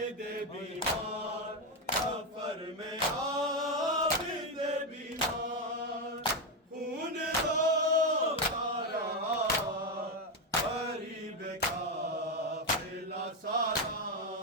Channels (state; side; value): normal; both; correlation 0.08